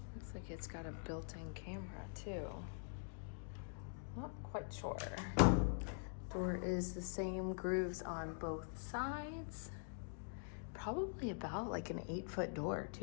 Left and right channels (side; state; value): right; silent; digital silence